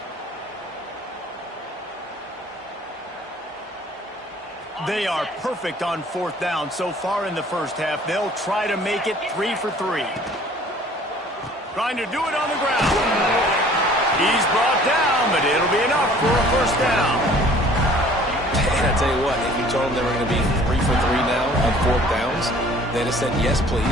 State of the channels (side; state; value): both; normal; correlation 0.52